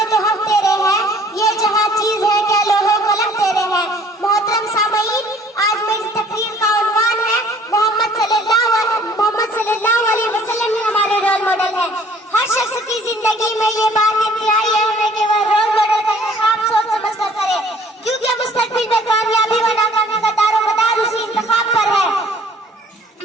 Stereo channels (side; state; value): both; normal; correlation 0.55